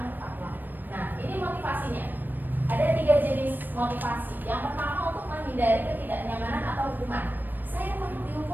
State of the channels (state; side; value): late; left; 0.091 ms